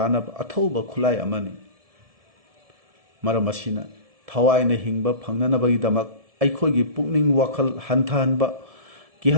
अथौबा खुलाई अमनी मरम असिना थवाइना हिंगबा फंगननबगीदमक अखोइगी पुकनिंग वखल हंथाहनबा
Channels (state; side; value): late; left; 1.7 ms